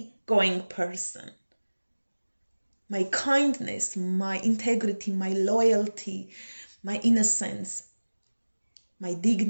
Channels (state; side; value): inverted; both; correlation -1.00